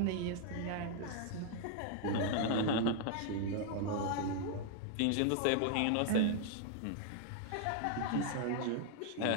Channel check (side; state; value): both; different; correlation 0.00